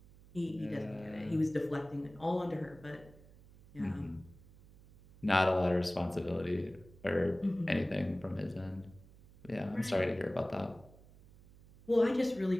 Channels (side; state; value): right; noise; hum, 23 dB below the sound